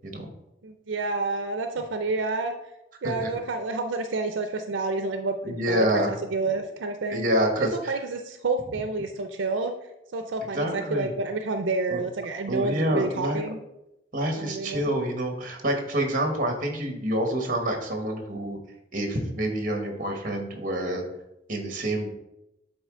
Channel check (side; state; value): both; normal; correlation 0.09